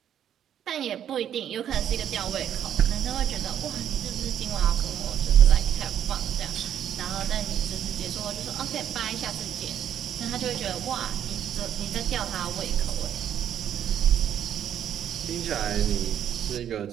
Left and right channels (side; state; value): left; quieter; 9.9 dB